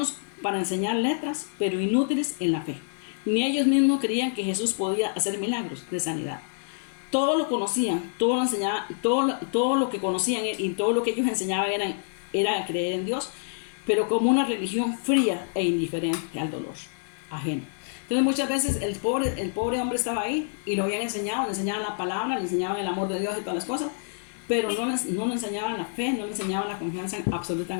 para enseñar letras, pero inútiles en la fe. Ni ellos mismos creían que Jesús podía hacer milagros de sanidad. Todo lo conocían, todo lo enseñaban, todo lo que conocían y todo lo que ellos enseñaban era creer en Dios, pero como una religión fría e indiferente al dolor ajeno. Entonces muchas veces el pobre hombre estaba ahí y lo habían enseñado, le enseñaban la palabra, le enseñaban el amor de Dios y todas las cosas, pero no le enseñaban la fe, no le enseñaban la confianza absoluta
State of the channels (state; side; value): silent; right; digital silence